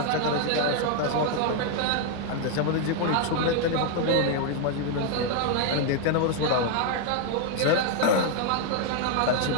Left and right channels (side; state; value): both; different; correlation 0.01